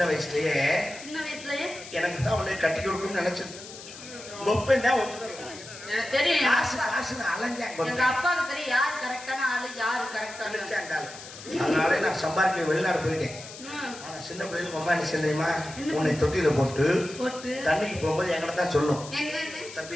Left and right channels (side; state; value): left; noise; hiss, 14 dB below the sound